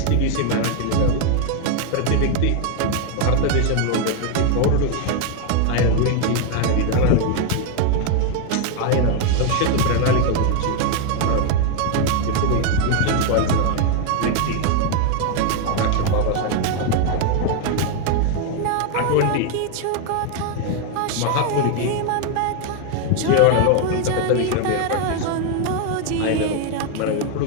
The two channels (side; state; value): both; different; correlation 0.01